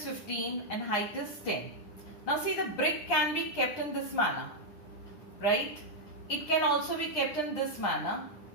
15 and height is 10. Now see, the brick can be kept in this manner, right? It can also be kept in this manner,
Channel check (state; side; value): late; right; 9.8 ms